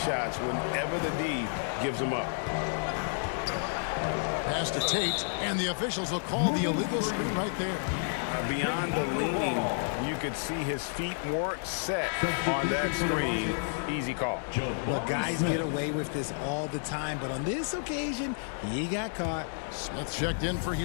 shots whenever the D gives them up. Pass to Tate, and the officials will call the illegal screen right there. Beyond the leaning, you could see his feet weren't set on that screen. Easy call. Well, guys get away with this all the time, but on this occasion, he got caught. Smith checked in for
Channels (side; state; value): right; silent; 57 dB below the other